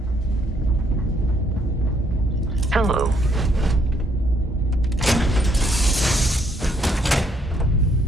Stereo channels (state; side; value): normal; both; correlation 0.70